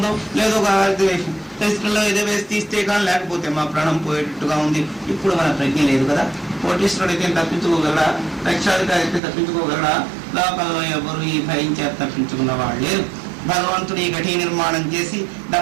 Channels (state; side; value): drops out; left; at 9.2 s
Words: లేదో వేసి టెస్టుల్లో ఏదో వేసి తీస్తే కానీ లేకపోతే మా ప్రాణం పోయేటట్టుగా ఉంది. ఇప్పుడు మన ప్రజ్ఞ లేదు కదా. కోటీశ్వరుడు అయితే తప్పించుకోగలడా? లక్షాధికారి అయితే తప్పించుకోగలడా? లోకంలో ఎవరు ఈ భయం చేత తప్పించుకున్న వాళ్ళు లేరు. భగవంతుడు ఈ ఘటీ నిర్మాణం చేసి